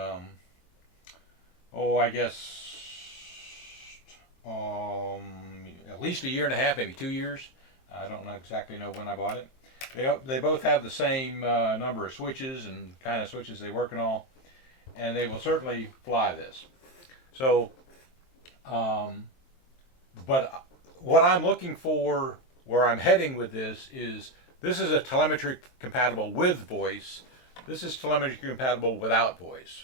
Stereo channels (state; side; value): late; right; 23 ms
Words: guess, at least a year and a half, maybe 2 years. I don't exactly know when I bought it. They both have the same number of switches and kind of switches they work and all, and they will certainly fly this. So, but what I'm looking for, where I'm heading with this is a telemetry compatible with voice. This is telemetry compatible without voice.